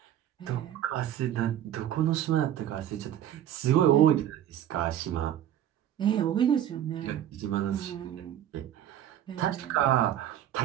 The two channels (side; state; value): left; quieter; 11.2 dB